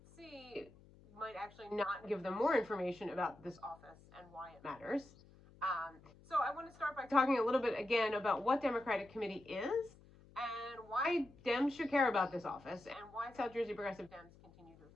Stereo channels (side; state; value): left; noise; hum, 24 dB below the sound